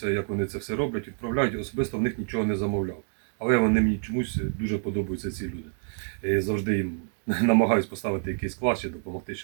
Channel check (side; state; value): left; silent; 58 dB below the other